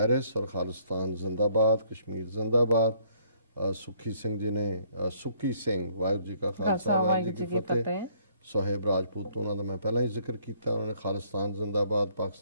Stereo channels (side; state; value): both; inverted; correlation -0.64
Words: और खालिस्तान जिंदाबाद, कश्मीर जिंदाबाद। सुखी सिंह जी ने सुखी सिंह वाहिगुरू जी का खालसा वाहिगुरू जी की फतेह। सोहेब राजपूत उन्होंने मैं पहला ही जिक्र किया, उन्होंने खालिस्तान जिंदाबाद,